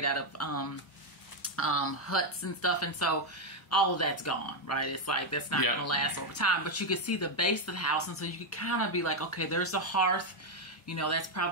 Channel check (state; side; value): normal; both; correlation 0.03